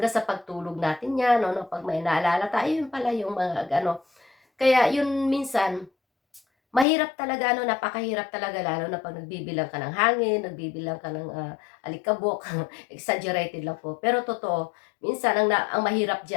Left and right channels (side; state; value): right; drops out; at 6.9 s